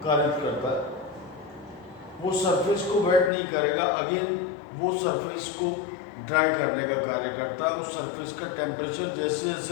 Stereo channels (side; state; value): right; drops out; at 3.3 s